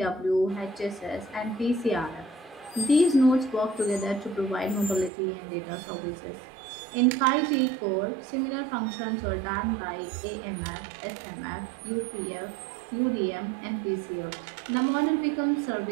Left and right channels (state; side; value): drops out; left; at 5.1 s